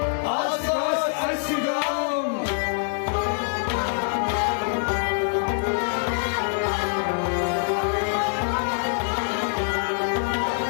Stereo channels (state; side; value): silent; right; 62 dB below the other